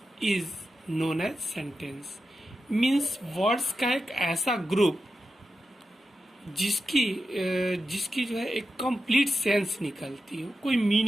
is known as sentence. Means words का एक ऐसा group जिसकी जो है एक complete sense निकलती हो, कोई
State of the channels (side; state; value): both; normal; correlation 0.90